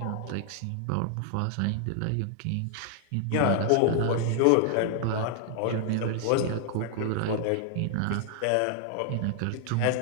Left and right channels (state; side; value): different; both; correlation -0.01